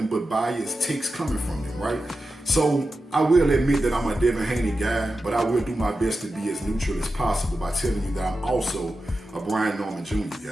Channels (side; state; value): both; normal; correlation 0.91